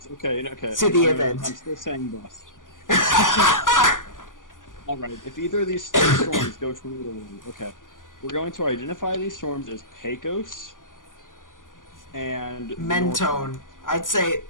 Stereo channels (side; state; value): right; late; 0.88 ms